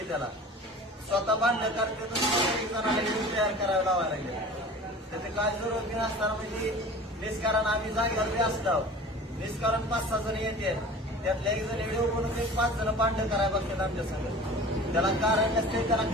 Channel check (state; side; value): normal; both; correlation 0.40